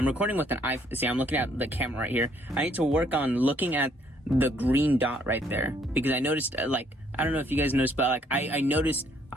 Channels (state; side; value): normal; both; correlation 0.66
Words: recording with an iPhone. See, I'm looking at the camera right here. I need to work on looking at the green dot right there, because I noticed, like, I don't know if you guys noticed, but like I noticed